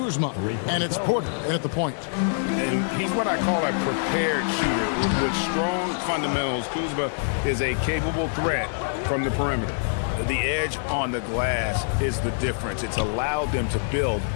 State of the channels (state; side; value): silent; right; 62 dB below the other